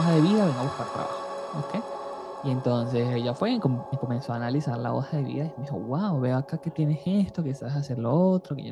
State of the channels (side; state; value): both; identical; correlation 1.00